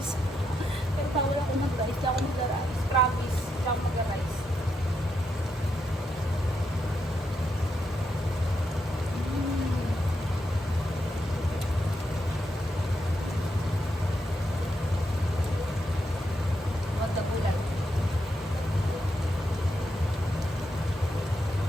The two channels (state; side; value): normal; both; correlation 0.82